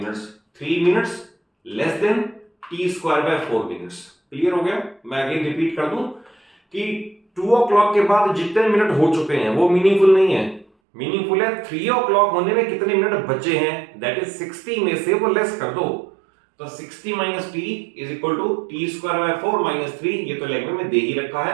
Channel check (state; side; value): drops out; left; at 10.7 s